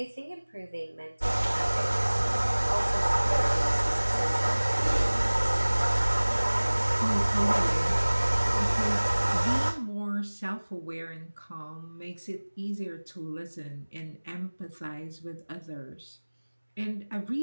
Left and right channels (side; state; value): both; inverted; correlation -1.00